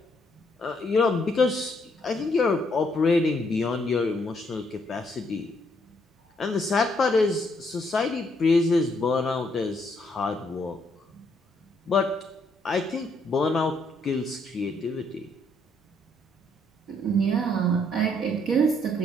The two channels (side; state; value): both; normal; correlation 0.72